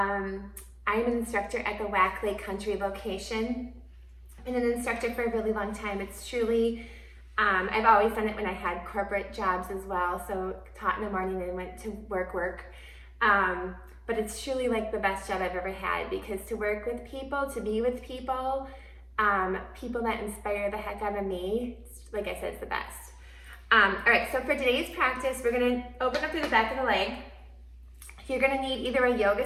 an instructor at the Whack Lake Country location. I've been an instructor for a really long time. It's truly, I've always done it when I had corporate jobs as well. So taught in the morning and went to work. But it's truly like the best job I've ever had, because to work with people, to be with people, people that inspire the heck out of me, like I said, it's the best. All right, so for today's practice, we're gonna open up through the back of the leg. You're gonna need either a yoga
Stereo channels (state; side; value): identical; both; correlation 1.00